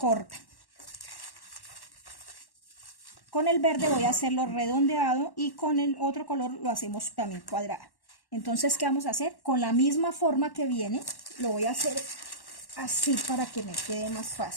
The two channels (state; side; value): late; right; 1.1 ms